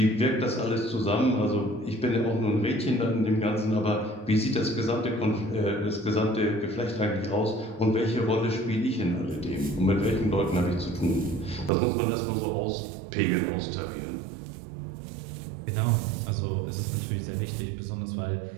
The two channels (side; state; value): left; drops out; at 11.7 s